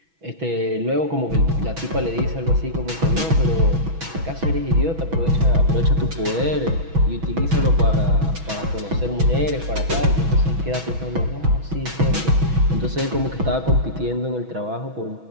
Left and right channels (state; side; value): late; left; 6.1 ms